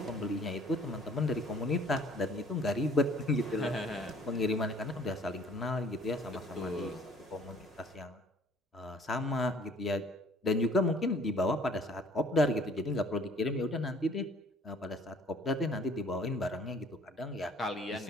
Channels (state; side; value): normal; both; correlation 0.56